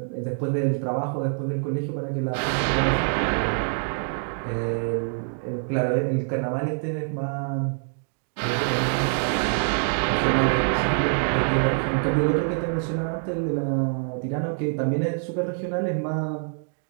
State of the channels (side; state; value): left; silent; 61 dB below the other